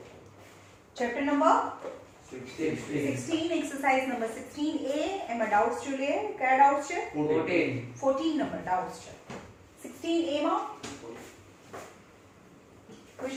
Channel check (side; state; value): both; identical; correlation 1.00